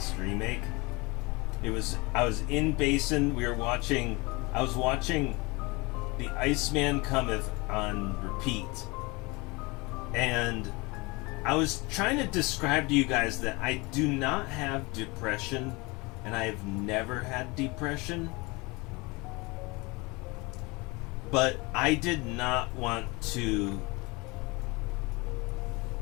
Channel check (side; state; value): right; quieter; 25.5 dB